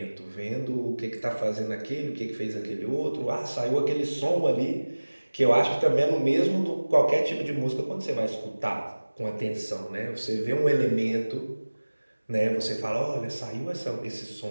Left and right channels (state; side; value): inverted; both; correlation -1.00